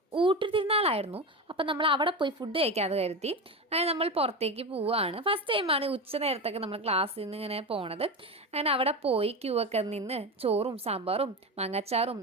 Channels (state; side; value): normal; both; correlation 0.21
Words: ഊട്ടുതിരുന്നാളായിരുന്നു. അപ്പം നമ്മൾ അവിടെ പോയി ഫുഡ് കഴിക്കാതെ കരുതി. അങ്ങനെ നമ്മൾ പുറത്തേക്ക് പോവുകയാണ്. ഫസ്റ്റ് ടൈമാണ് ഉച്ച നേരത്തൊക്കെ നമ്മൾ ക്ലാസ്സിൽ നിന്ന് ഇങ്ങനെ പോണത്. അങ്ങനെ അവിടെ പോയി ക്യൂ ഒക്കെ നിന്ന് ചോറും സാമ്പാറും മാങ്ങാച്ചാറും